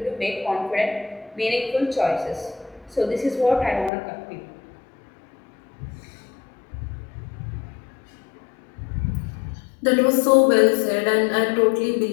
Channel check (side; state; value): right; drops out; at 3.9 s